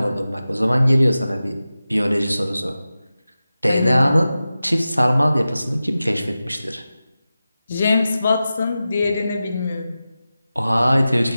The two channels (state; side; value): inverted; both; correlation -0.94